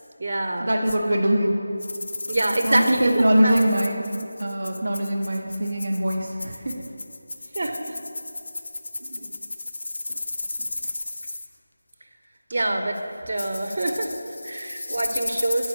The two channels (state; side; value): inverted; both; correlation -0.96